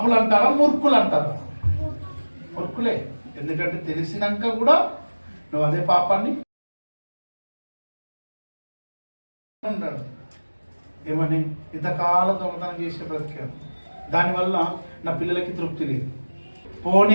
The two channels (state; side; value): inverted; both; correlation -1.00